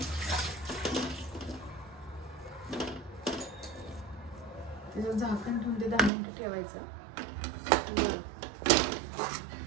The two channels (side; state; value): left; drops out; at 6.1 s